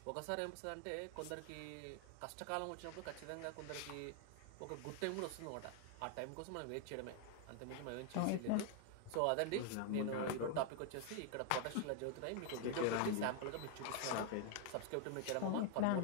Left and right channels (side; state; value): both; different; correlation 0.00